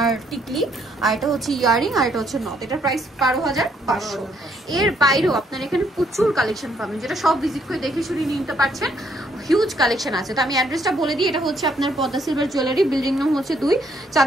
টিকলি, আর এটা হচ্ছে ইয়ারিং, আর এটা হচ্ছে নথ। এটার প্রাইস 12,500। এর বাইরেও আপনার এখানে প্রচুর কালেকশন পাবেন, যেটা সব ভিজিট করে দেখে শুনে নিতে পারছেন। হিউজ কালেকশন আছে। তো আমি অ্যাড্রেসটা বলে দিই, এটা হচ্ছে আপনার পদ্মা সিলভার জুয়েলারি, বিল্ডিং নাম হচ্ছে 2,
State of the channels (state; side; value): normal; both; correlation 0.70